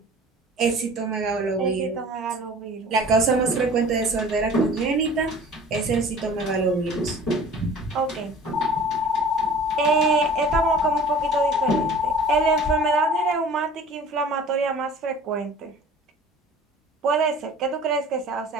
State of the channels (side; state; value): both; normal; correlation 0.44